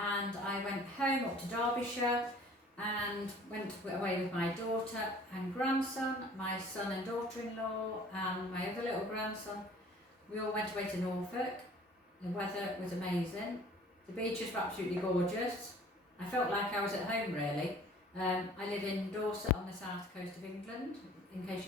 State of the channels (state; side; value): normal; both; correlation 0.50